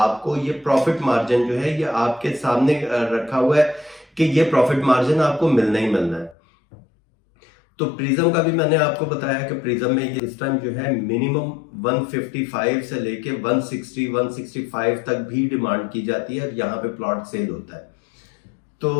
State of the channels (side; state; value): right; drops out; at 6.4 s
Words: ये प्रॉफिट मार्जिन जो है ये आपके सामने रखा हुआ है कि ये प्रॉफिट मार्जिन आपको मिलना ही मिलना है। तो प्रिज्म का भी मैंने आपको बताया कि प्रिज्म में ये इस टाइम जो है मिनिमम 155 से लेके 160, 165 तक भी डिमांड की जाती है और यहाँ पे प्लॉट सेल होता है। तो